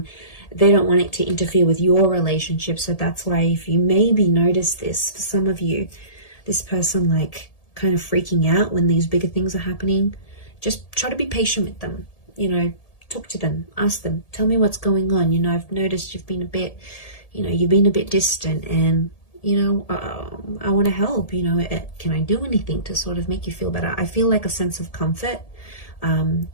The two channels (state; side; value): late; right; 1.8 ms